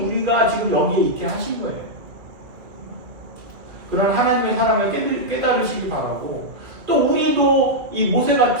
지금 여기에 있게 하신 거예요. 그런 하나님의 사랑을 깨달으시기 바라고 또 우리도 이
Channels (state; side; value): late; left; 2.3 ms